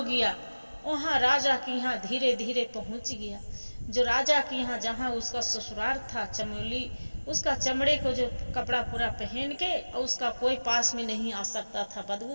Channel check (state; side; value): inverted; both; correlation -1.00